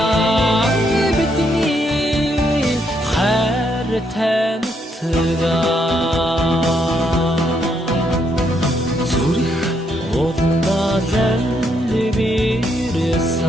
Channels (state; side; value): normal; both; correlation 0.75